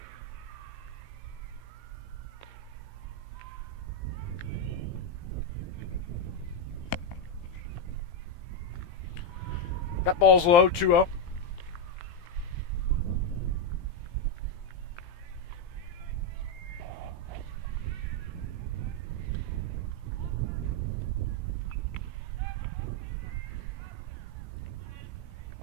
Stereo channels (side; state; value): right; late; 17 ms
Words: That ball's low, 2-0.